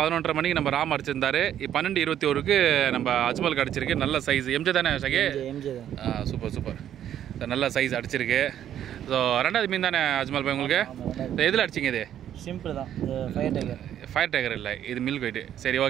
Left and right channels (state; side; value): quieter; left; 10.6 dB